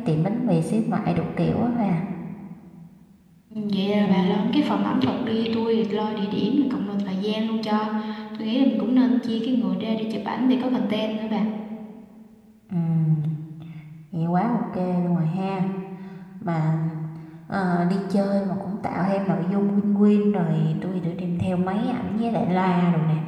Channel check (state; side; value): identical; both; correlation 1.00